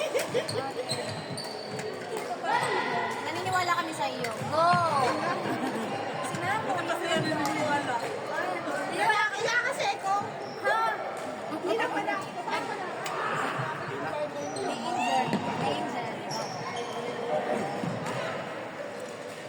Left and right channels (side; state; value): both; identical; correlation 1.00